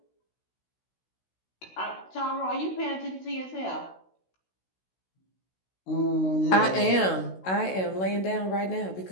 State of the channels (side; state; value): right; late; 16 ms